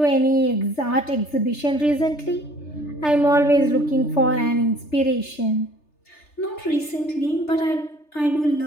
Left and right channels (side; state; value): right; late; 3.3 ms